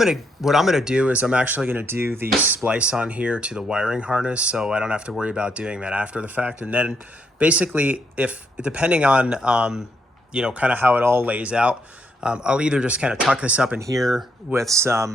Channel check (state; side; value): normal; both; correlation 0.75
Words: gonna do is I'm actually gonna do the splice on here to the wiring harness, so I don't have to worry about doing that after the fact. And then basically, if depending on you know, kind of how it all lays out, I'll either just kind of tuck this up in here with